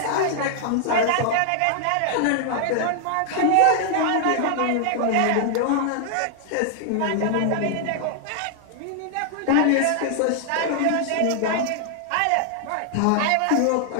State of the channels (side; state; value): both; different; correlation 0.00